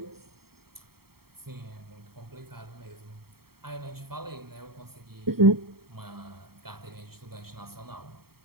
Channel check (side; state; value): left; late; 0.95 ms